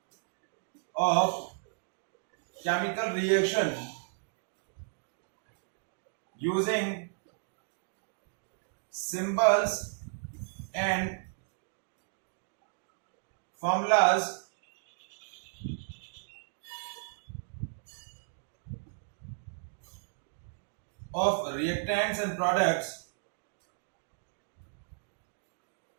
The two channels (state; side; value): silent; left; digital silence